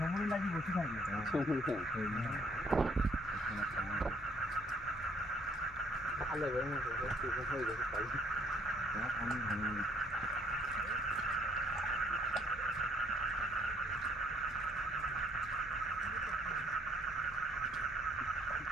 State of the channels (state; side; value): normal; both; correlation 0.63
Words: লাগি বসে থাকবে। ভালো হয়ে গেছে।